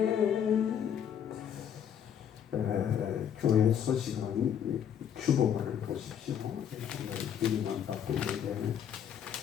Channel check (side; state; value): right; quieter; 8.8 dB